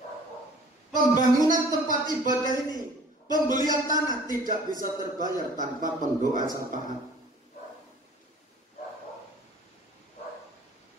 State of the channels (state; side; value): normal; both; correlation 0.50